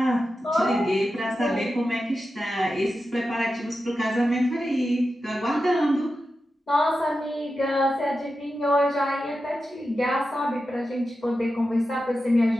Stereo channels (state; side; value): normal; both; correlation 0.91